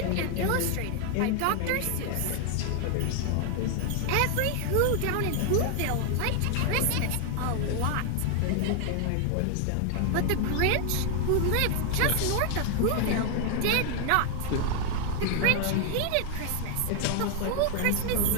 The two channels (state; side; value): different; both; correlation 0.00